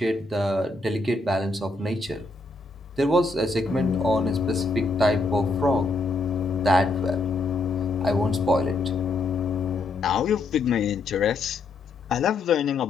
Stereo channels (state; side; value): quieter; right; 3.3 dB